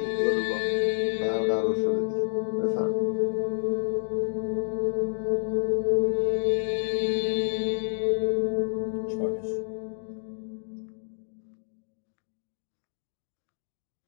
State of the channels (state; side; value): silent; right; 55 dB below the other